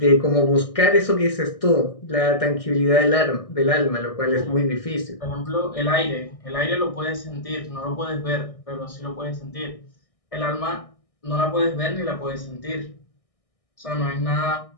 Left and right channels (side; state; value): right; late; 1.6 ms